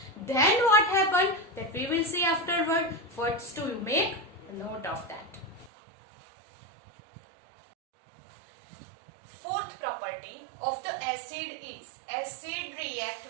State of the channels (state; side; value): drops out; left; at 5.7 s